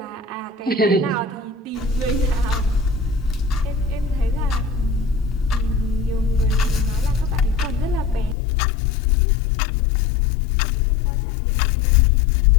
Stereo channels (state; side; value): drops out; right; at 8.3 s